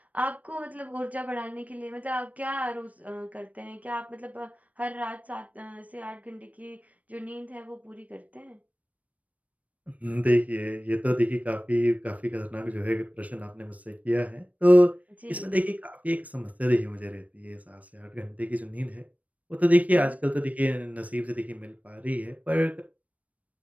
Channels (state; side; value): late; left; 0.070 ms